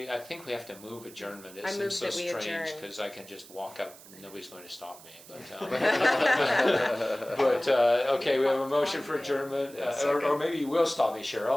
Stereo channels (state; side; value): noise; right; hiss, 20 dB below the sound